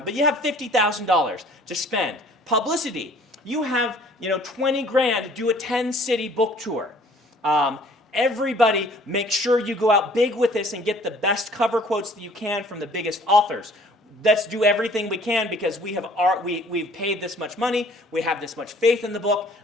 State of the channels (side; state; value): both; normal; correlation 0.55